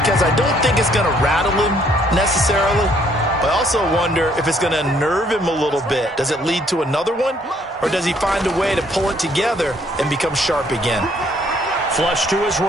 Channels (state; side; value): normal; both; correlation 0.65